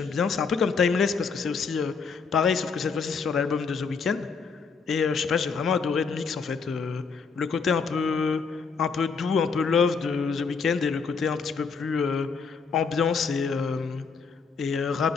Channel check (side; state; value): right; quieter; 5.3 dB